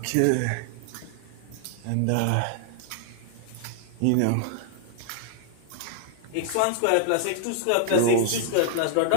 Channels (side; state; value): both; different; correlation 0.00